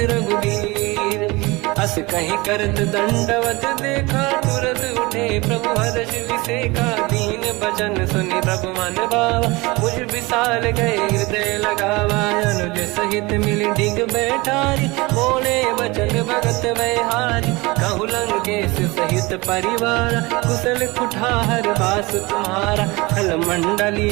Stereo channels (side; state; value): left; quieter; 23.5 dB